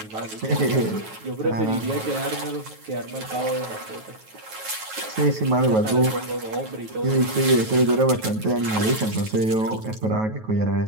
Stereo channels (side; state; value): left; late; 9.3 ms